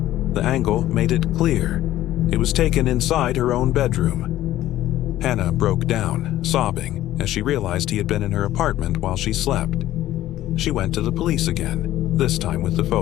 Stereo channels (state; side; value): quieter; right; 14.1 dB